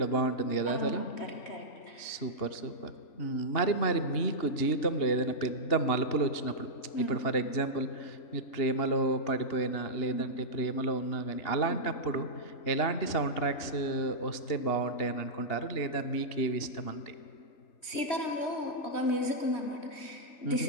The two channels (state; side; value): late; right; 2.8 ms